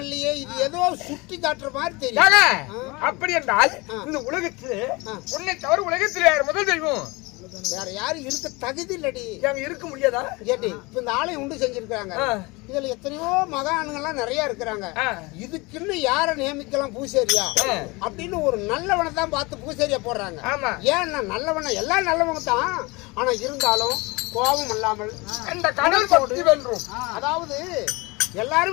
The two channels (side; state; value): right; quieter; 24.9 dB